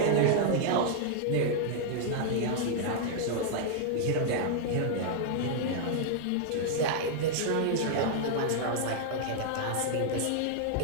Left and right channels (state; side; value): different; both; correlation -0.01